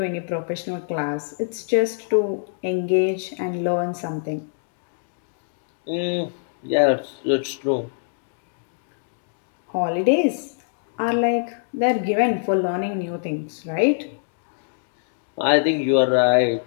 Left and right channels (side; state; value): right; silent; digital silence